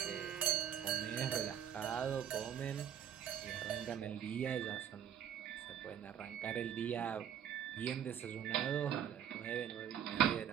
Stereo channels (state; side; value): quieter; left; 9.3 dB